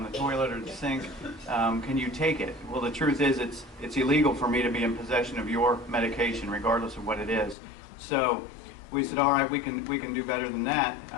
the toilet or the sink. Can you take it? Well, the truth is it's illegal for me to be in possession of your medication, regardless of what it is. So we said, all right, we can do better than that,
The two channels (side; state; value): right; drops out; at 7.6 s